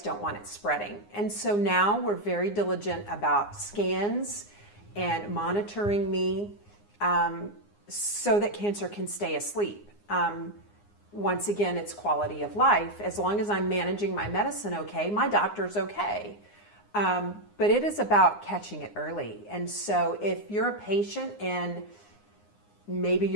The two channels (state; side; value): late; right; 9.7 ms